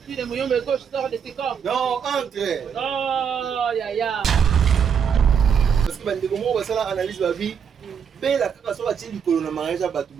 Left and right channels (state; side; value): quieter; left; 7.3 dB